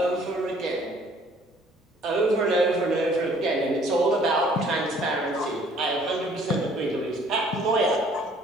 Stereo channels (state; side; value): normal; both; correlation 0.58